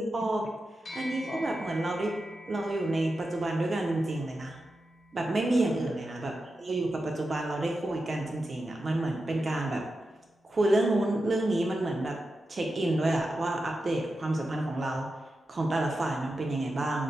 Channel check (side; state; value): both; normal; correlation 0.90